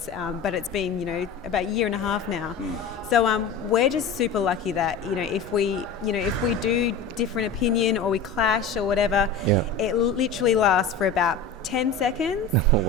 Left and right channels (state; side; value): quieter; right; 4.5 dB